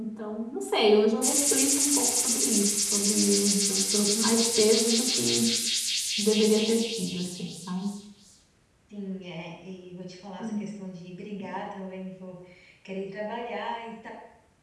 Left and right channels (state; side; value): identical; both; correlation 1.00